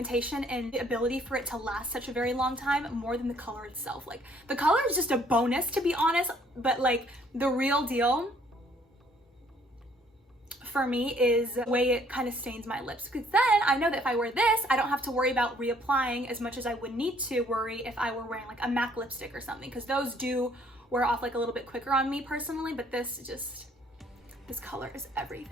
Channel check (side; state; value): both; normal; correlation 0.62